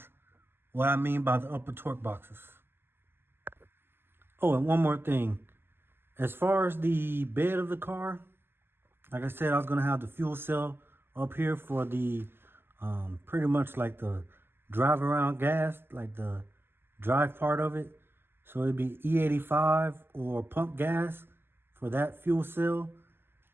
what I mean by the upper torque boxes. Oh, and one more thing. As far as the bed of the car, like I said, I was gonna have the fuel cell up here for the pretty much like the drive around gas, like the drive part of it. So it'd be E85 or pump gas for that fuel cell.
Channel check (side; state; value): left; late; 0.11 ms